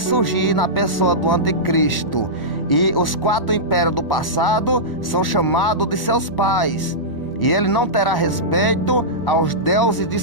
na pessoa do anticristo. E os 4 impérios do passado são chamados de seus pais, e ele não terá respeito aos deuses de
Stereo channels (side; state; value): right; late; 1.0 ms